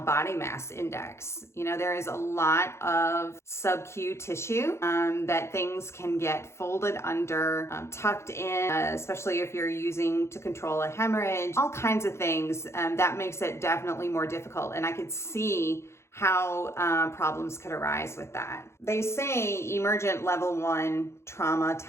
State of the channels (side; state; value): right; late; 0.13 ms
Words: mass index. There is a lot of sub-Q tissue that things can get folded under, tucked in, especially if you're using to control a hemorrhage, all kinds of things. That makes it definitely more difficult. And I could see how problems could arise with that. They say emergent level 1 trauma